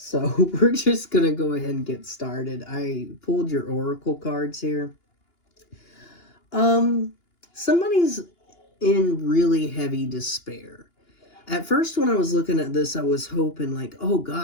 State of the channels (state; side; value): late; right; 2.9 ms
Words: we're just going to go ahead and get started. I pulled your oracle cards here. Somebody's in really heavy despair. At first, when I was looking at this, I was hoping like, oh